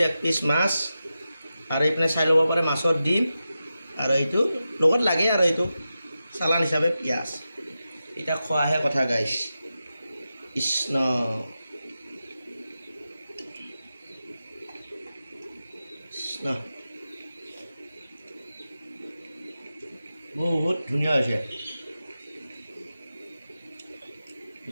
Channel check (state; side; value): inverted; both; correlation -0.91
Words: 1 পিচ মাছ, আৰু ইপিনে চাই ল'ব পাৰে মাছৰ ডিম, আৰু এইটো লগত লাগে আৰু এইটো চালান হিচাপে পিঁয়াজ। এতিয়া খোৱাহে কথা গাইজ। কৃষ্ণ বহুত ধুনীয়া হৈছে,